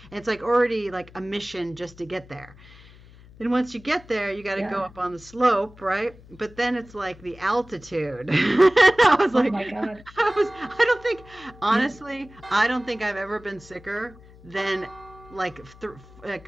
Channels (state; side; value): noise; left; hum, 22 dB below the sound